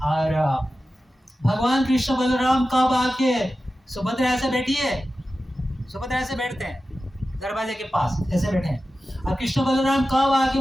और भगवान कृष्ण बलराम कब आके, सुभद्रा ऐसे बैठी है, सुभद्रा ऐसे बैठते हैं दरवाजे के पास, ऐसे बैठे हैं, और कृष्ण बलराम कब आके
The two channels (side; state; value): both; normal; correlation 0.93